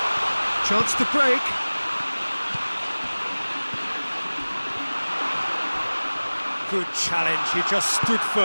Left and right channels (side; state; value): both; inverted; correlation -1.00